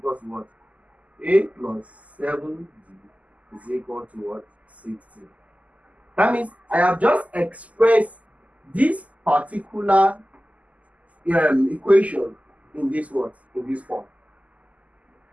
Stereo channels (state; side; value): late; left; 0.073 ms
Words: to what? A plus 7d is equal to what? 60. That means I have just expressed this particular equation in this what? In this form.